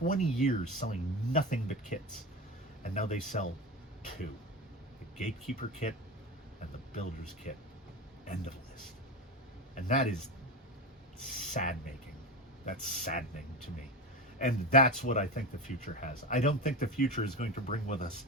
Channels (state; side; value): normal; both; correlation 0.22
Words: years selling nothing but kits, and now they sell two: the Gatekeeper kit and the Builder's kit. End of list. And that is sad-making. That's saddening to me. And that's what I think the future has. I don't think the future is going to bring with us